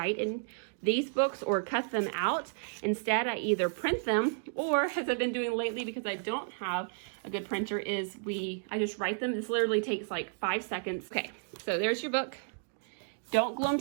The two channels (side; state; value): left; silent; digital silence